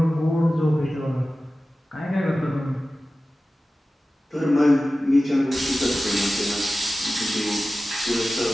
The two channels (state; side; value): normal; both; correlation 0.95